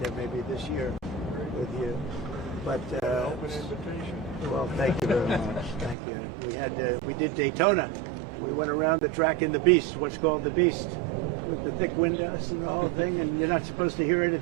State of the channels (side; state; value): left; drops out; at 6.0 s